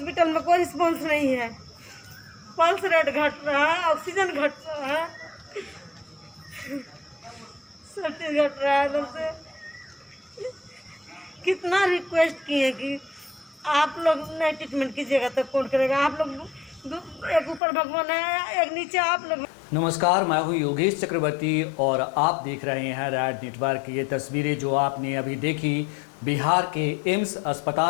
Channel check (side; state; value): right; drops out; at 17.6 s